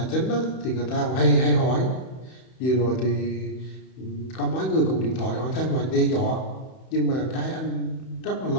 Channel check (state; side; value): late; right; 31 ms